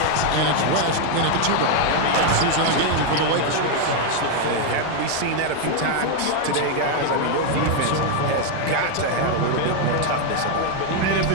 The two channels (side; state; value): both; different; correlation 0.01